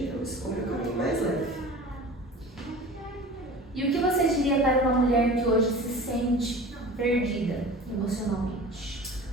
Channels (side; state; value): both; normal; correlation 0.39